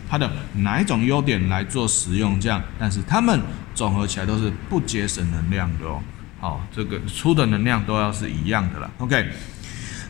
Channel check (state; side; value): quieter; right; 20.1 dB